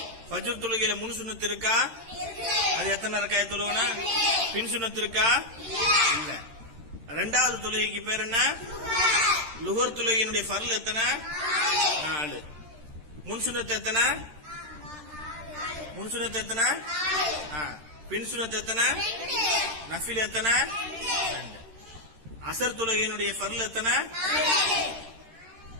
ஃபஜ்ர் தொழுகையில முன் சுன்னத் இருக்கா? அது எத்தனை ரக்காயத் தொழுகணும்? பின் சுன்னத் இருக்கா? இல்ல. இரண்டாவது தொழுகைக்கு பேர் என்ன? லுஹர் தொழுகையினுடைய ஃபர்ல் எத்தனை? 4. முன் சுன்னத் எத்தனை? முன் சுன்னத் எத்தனை? பின் சுன்னத் எத்தனை? நஃபில் எத்தனை? 2. அசர் தொழுகையினுடைய ஃபர்ல் எத்தனை?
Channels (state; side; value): late; left; 13 ms